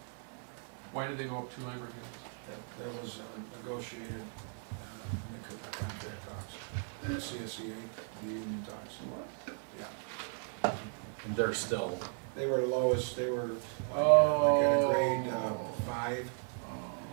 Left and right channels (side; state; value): left; silent; 54 dB below the other